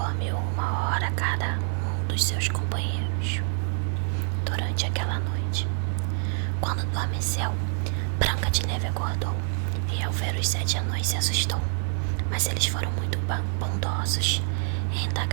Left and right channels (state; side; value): silent; left; 60 dB below the other